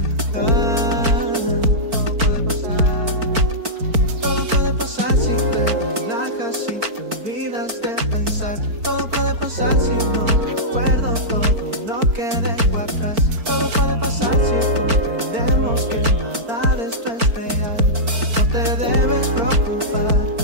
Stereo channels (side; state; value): left; late; 4.5 ms